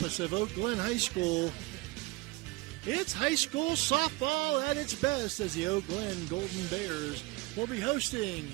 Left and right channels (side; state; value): left; quieter; 22.0 dB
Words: of Oak Glen High School, it's high school softball at its best as the Oak Glen Golden Bears will be